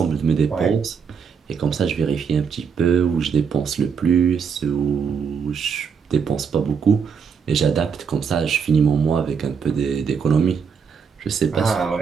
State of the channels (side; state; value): left; quieter; 6.4 dB